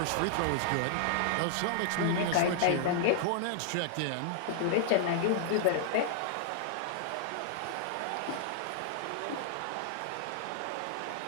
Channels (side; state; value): both; different; correlation -0.01